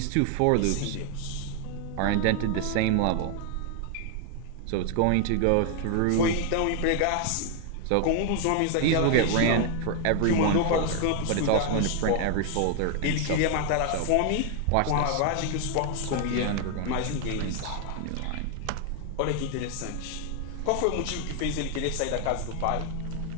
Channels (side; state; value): both; different; correlation 0.00